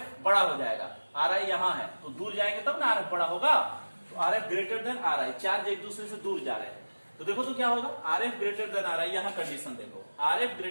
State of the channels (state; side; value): inverted; both; correlation -1.00